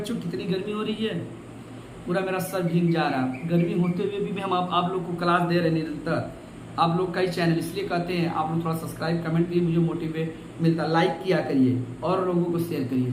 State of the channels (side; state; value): both; identical; correlation 1.00